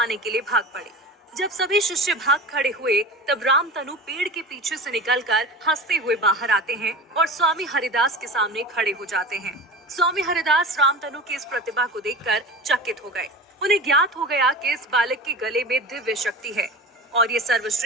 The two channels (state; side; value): normal; both; correlation 0.33